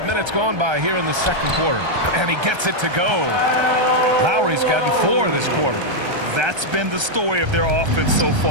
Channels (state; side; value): late; left; 1.3 ms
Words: minutes gone by here in the second quarter. And he gets it to go. Lowry's gotten 4 this quarter. That's been the story of their offense so